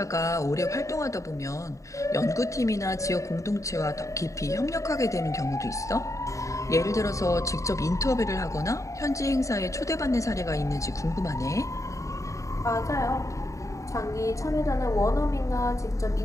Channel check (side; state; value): right; late; 0.15 ms